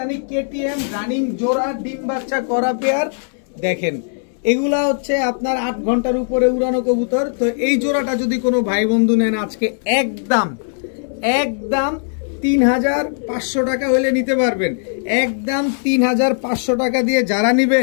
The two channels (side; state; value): right; silent; 64 dB below the other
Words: কেটিএম রানিং জোড়া, ডিম বাচ্চা করা পেয়ার। দেখেন এগুলা হচ্ছে আপনার 8 ঘন্টার উপরে উড়ানো কবুতর। তো এই জোড়াটা যদি কোনো ভাই বন্ধু নেন আজকে একদম 3500 টাকা হলে নিতে পারবেন। একদম 3500 টাকা দিয়ে যারা